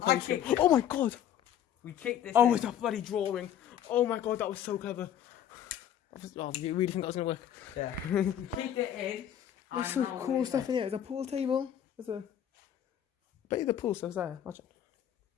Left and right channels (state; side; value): quieter; right; 10.2 dB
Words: kicked it. Oh my god! We kicked this. Oh, in. it's a bloody drawing. Oh my god, that was so clever. Oh, you really think that was gonna work? Yeah. We kicked it in. There's some cool stuff in here. There's a pool table. There's a. I bet you the pool stuff's there. Imagine.